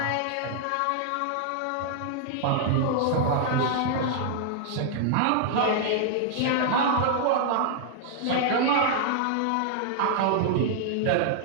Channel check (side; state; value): both; different; correlation -0.01